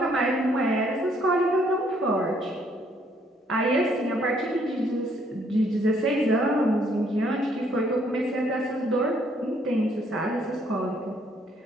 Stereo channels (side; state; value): both; normal; correlation 0.67